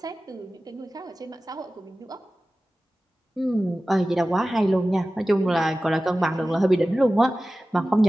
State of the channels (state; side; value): normal; both; correlation 0.96